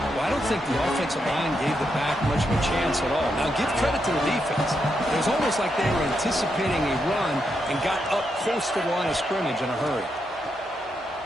Well, I don't think the offensive line gave the back much of a chance at all. Now, give credit to the defense. It was almost like they were anticipating a run and got up close to the line of scrimmage in a hurry.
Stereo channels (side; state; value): both; normal; correlation 0.82